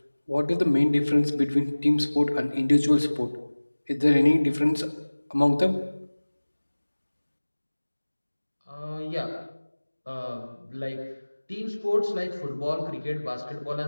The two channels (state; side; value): inverted; both; correlation -1.00